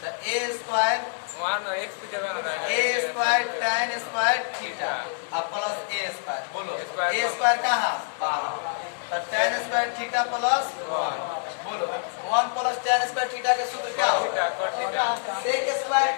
तो ए स्क्वायर tan स्क्वायर थीटा अब प्लस ए स्क्वायर, बोलो ए स्क्वायर कहाँ? तो tan स्क्वायर थीटा प्लस 1, बोलो 1 प्लस tan स्क्वायर थीटा का सूत्र क्या होगा? sec square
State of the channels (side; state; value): right; silent; digital silence